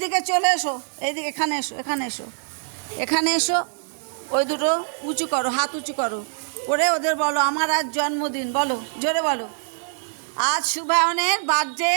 চলে এসো, এইদিকে, এখানে এসো, এখানে এসো, এখানে এসো, ওই দুটো উঁচু করো, হাত উঁচু করো করে ওদের বলো আমার আজ জন্মদিন, বলো জোরে বলো। আজ শুভায়নের বার্থডে,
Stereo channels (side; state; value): left; silent; digital silence